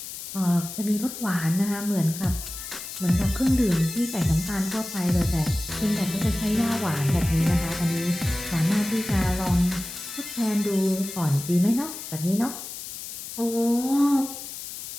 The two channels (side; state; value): left; noise; hiss, 9 dB below the sound